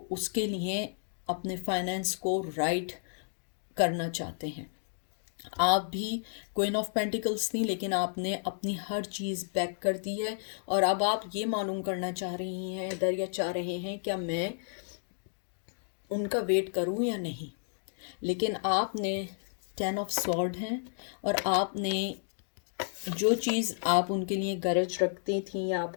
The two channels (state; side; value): silent; right; digital silence